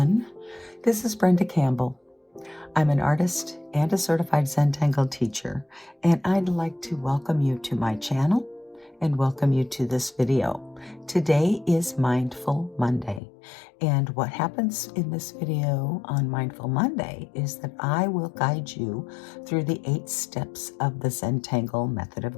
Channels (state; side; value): drops out; right; at 13.2 s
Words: This is Brenda Campbell. I'm an artist and a certified Zentangle teacher, and I'd like to welcome you to my channel and welcome you to this video. Today is Mindful Monday, and what happens in this video on Mindful Monday is that I will guide you through the 8 steps of the Zentangle method